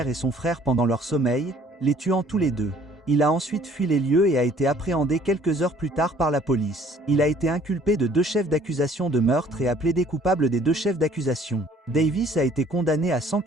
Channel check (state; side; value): normal; both; correlation 0.57